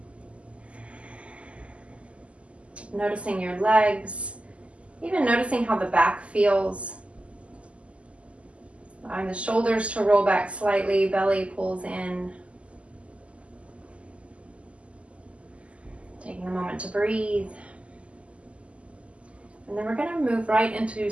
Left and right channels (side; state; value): left; late; 0.059 ms